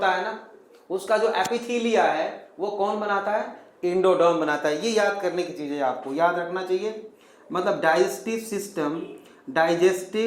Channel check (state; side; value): identical; both; correlation 1.00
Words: है ना उसका जो एपिथेलिया है वो कौन बनाता है, इंडोडर्म बनाता है। ये याद करने की चीज है, आपको याद रखना चाहिए। मतलब digestive system,